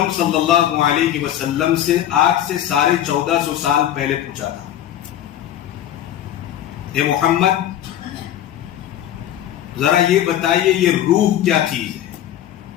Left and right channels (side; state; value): right; quieter; 11.5 dB